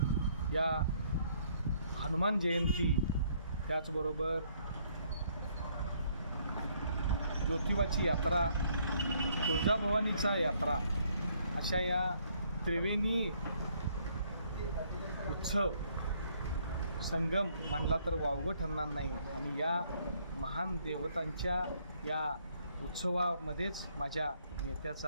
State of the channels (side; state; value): both; inverted; correlation -0.67